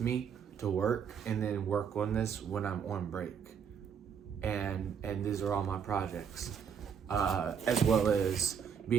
me to work and then work on this when I'm on break. And these are all my projects, as well as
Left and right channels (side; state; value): left; quieter; 7.3 dB